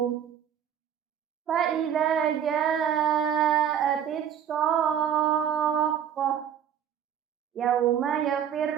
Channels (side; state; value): left; quieter; 9.0 dB